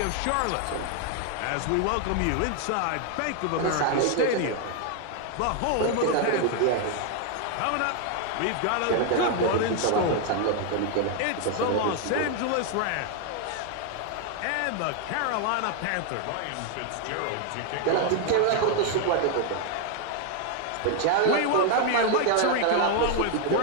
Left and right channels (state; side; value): different; both; correlation 0.01